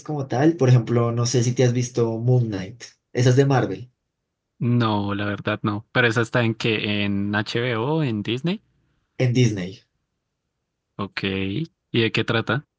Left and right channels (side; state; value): both; identical; correlation 1.00